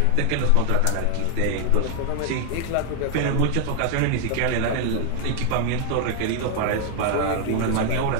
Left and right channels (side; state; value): both; different; correlation 0.00